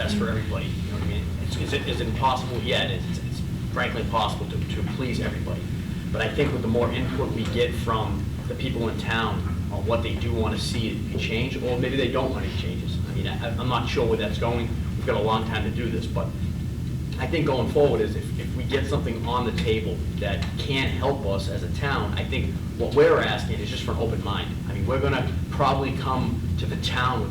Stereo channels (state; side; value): identical; both; correlation 1.00